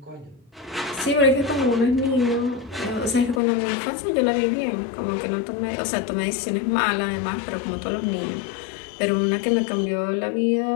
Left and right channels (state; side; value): drops out; right; at 3.4 s